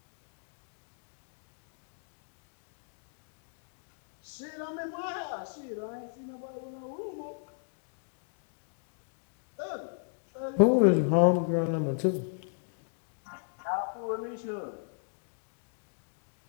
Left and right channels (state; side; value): silent; right; digital silence